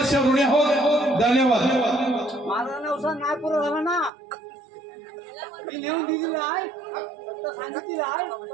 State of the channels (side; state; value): left; drops out; at 4.1 s